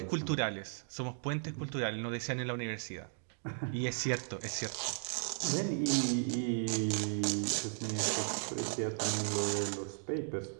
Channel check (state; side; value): silent; left; digital silence